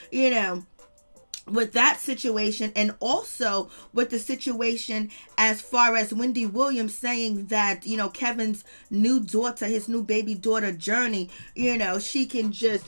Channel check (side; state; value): both; inverted; correlation -1.00